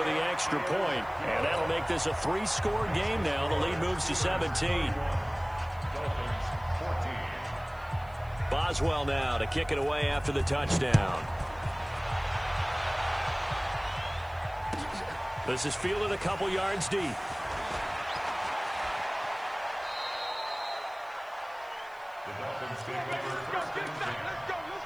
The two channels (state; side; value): noise; right; hiss, 29 dB below the sound